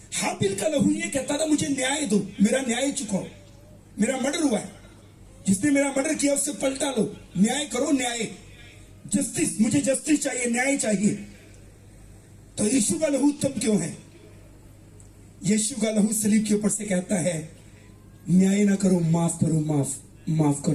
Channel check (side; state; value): both; identical; correlation 1.00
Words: हाबिल का लहू ये कहता था, मुझे न्याय दो, मेरा न्याय चुकाओ, मेरा मर्डर हुआ है, जिसने मेरा मर्डर किया उससे पलटा लो, न्याय करो, न्याय, जस्टिस, मुझे जस्टिस चाहिए, न्याय चाहिए। तो यीशु का लहू उत्तम क्यों है? यीशु का लहू सलीब के ऊपर से कहता है, न्याय ना करो, माफ करो, माफ